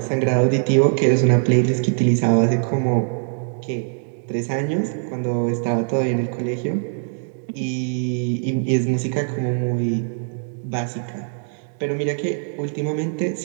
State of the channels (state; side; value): silent; left; digital silence